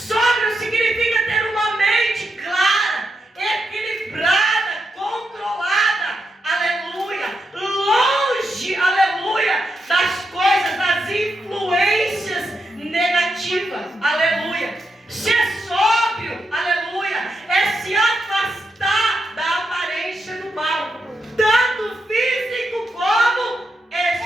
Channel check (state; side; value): normal; both; correlation 0.84